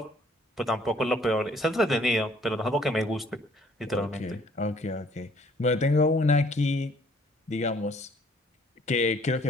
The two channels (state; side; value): normal; both; correlation 0.60